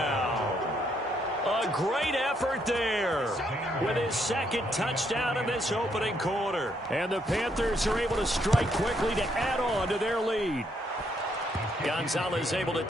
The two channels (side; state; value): both; normal; correlation 0.73